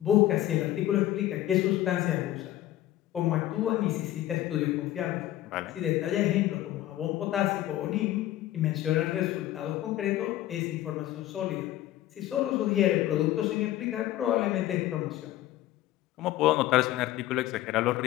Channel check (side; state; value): right; quieter; 14.2 dB